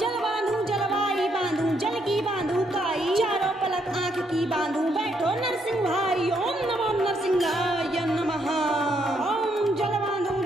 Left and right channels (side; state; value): both; normal; correlation 0.74